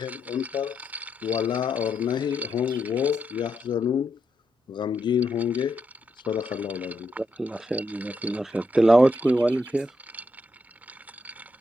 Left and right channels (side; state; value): both; normal; correlation 0.81